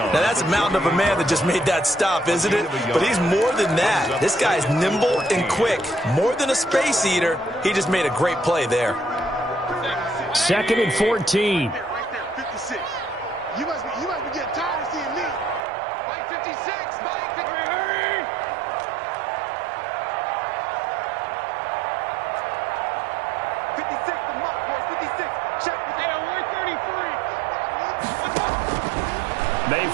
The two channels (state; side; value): drops out; left; at 15.6 s